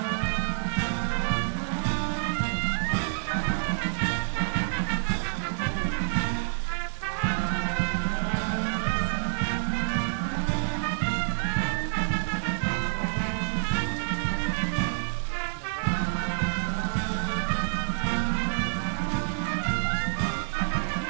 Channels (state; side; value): silent; left; digital silence